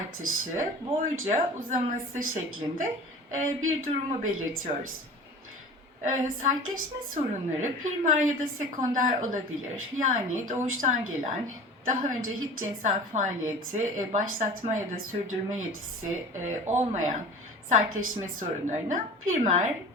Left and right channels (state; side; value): normal; both; correlation 0.39